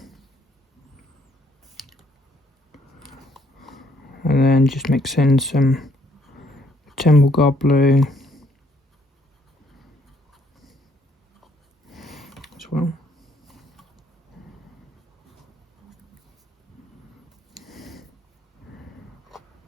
And then just mix in some Temple Guard Blue as well.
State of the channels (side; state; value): both; normal; correlation 0.67